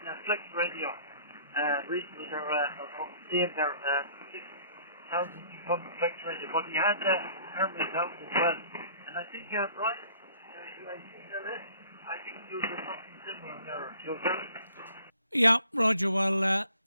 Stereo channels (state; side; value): inverted; both; correlation -0.56